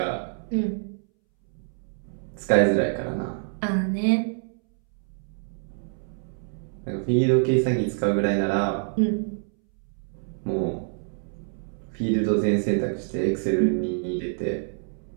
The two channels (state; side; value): silent; left; 61 dB below the other